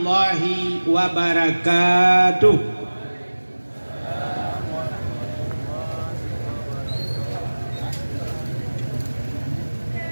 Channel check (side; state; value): both; inverted; correlation -1.00